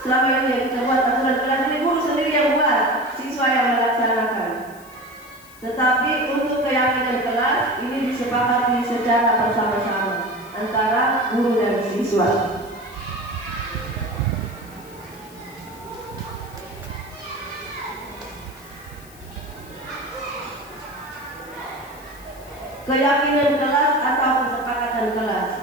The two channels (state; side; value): noise; left; hiss, 23 dB below the sound